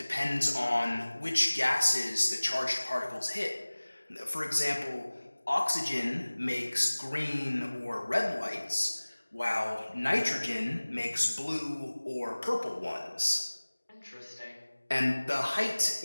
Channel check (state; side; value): inverted; both; correlation -1.00